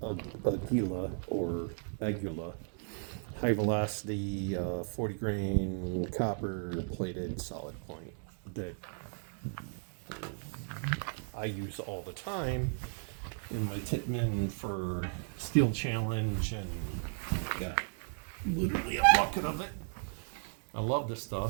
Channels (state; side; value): silent; left; 54 dB below the other